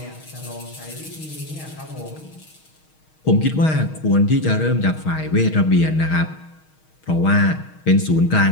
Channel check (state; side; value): late; right; 6.4 ms